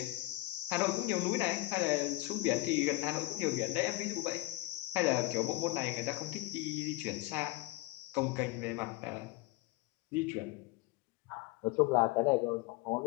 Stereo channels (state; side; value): quieter; right; 19.9 dB